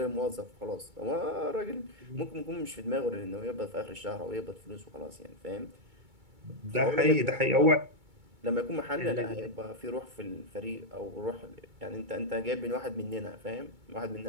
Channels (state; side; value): late; left; 2.2 ms